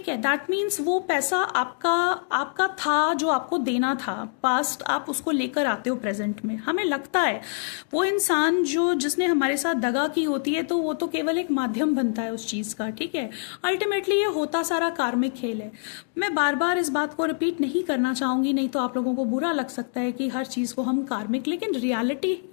है, दैट मीन्स वो पैसा आपका था, जो आपको देना था पास्ट, आप उसको लेकर आते हो प्रेजेंट में। हमें लगता है वो इंसान जिसने हमारे साथ दगा की होती है तो वो तो केवल एक माध्यम बनता है उस चीज का, ठीक है। अल्टीमेटली ये होता सारा कार्मिक खेल है। मैं बार बार इस बात को रिपीट नहीं करना चाहूंगी, नहीं तो आप लोगों को बुरा लग सकता है कि हर चीज को हम कार्मिक, लेकिन रियलिटी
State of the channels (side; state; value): right; silent; digital silence